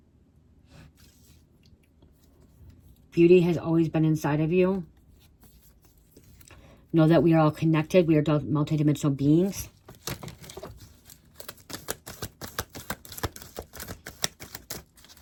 Beauty has always been inside of you. Know that we are all connected. We are multidimensional beings.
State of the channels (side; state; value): both; identical; correlation 1.00